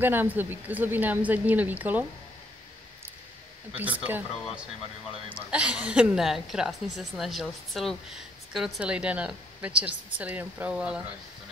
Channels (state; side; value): normal; both; correlation 0.70